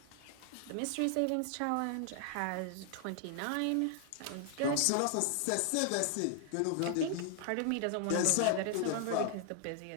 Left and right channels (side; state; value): both; different; correlation 0.00